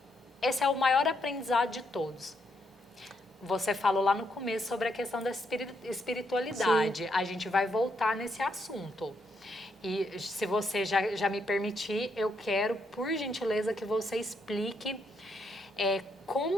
é o maior aprendizado de todos. Você falou lá no começo sobre a questão da espiritualidade. Sim. A gente vai voltar nesse assunto. E se você já me permitir, eu quero, por gentileza, que você explique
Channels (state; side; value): normal; both; correlation 0.77